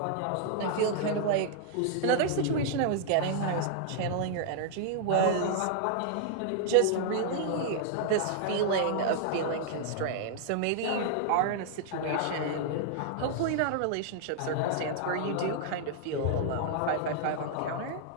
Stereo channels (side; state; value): both; different; correlation -0.01